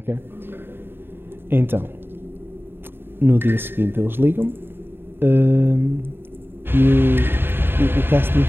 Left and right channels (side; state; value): left; late; 0.10 ms